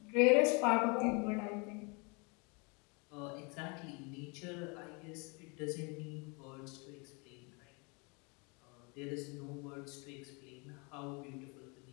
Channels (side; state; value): right; quieter; 31.4 dB